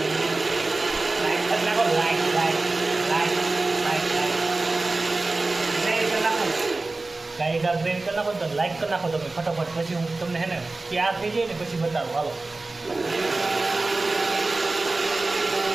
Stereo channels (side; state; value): left; quieter; 3.3 dB